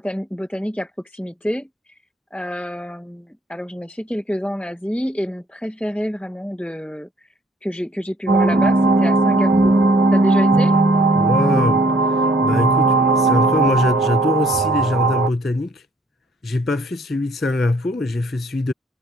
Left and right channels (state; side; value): normal; both; correlation 0.62